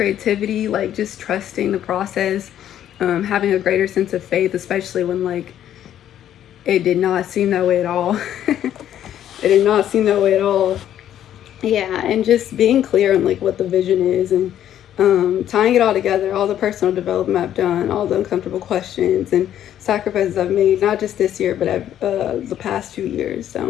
like just trusting the process, having a greater sense of faith, especially when like it did not seem that way at all. It did not seem that way at all. Yeah, and just being clear on like what the vision is, and tying it all together, all the personal development I've done, all the uncomfortable questions and sacrifices I've made, not just this year, but the past 2 years.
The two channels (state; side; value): quieter; right; 10.9 dB